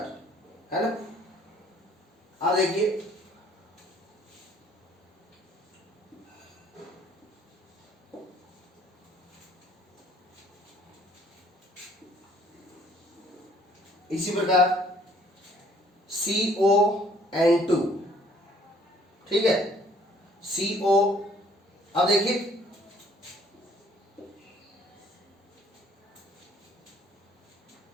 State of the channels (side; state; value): both; normal; correlation 0.60